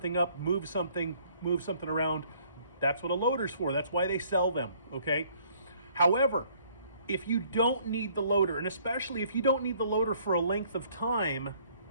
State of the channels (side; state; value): both; inverted; correlation -0.61